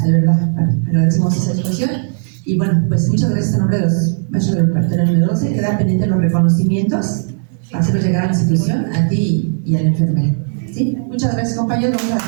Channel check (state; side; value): silent; left; 59 dB below the other